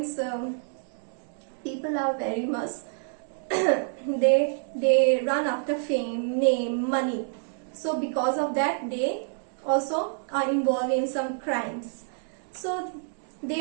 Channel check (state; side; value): silent; left; digital silence